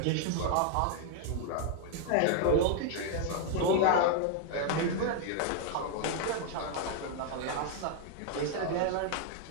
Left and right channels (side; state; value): both; different; correlation 0.00